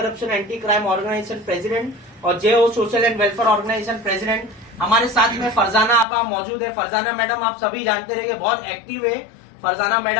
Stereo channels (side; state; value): right; drops out; at 6.1 s